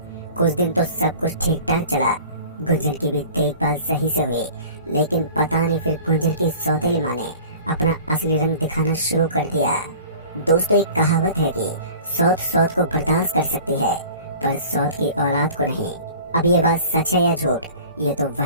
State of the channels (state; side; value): inverted; both; correlation -0.44